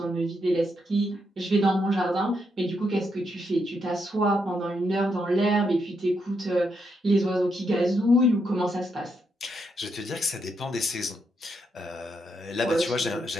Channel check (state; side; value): normal; both; correlation 0.80